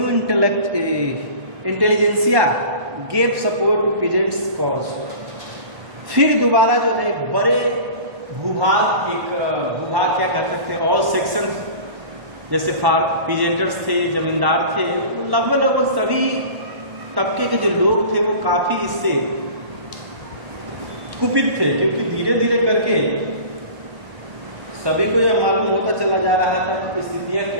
intelligentsia gave support to peasants cause. फिर दोबारा जो है बड़े भूभाग क्या कह सकते हैं, ऑल सेक्शन जैसे पीजेंटर्स थे, जमींदार थे, लगभग सभी तबके के जो लोग थे वो काफी इससे कुपित थे, क्योंकि धीरे धीरे करके सभी को यह मालूम होता चला जा रहा था कि स्थितियां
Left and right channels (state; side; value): late; left; 1.1 ms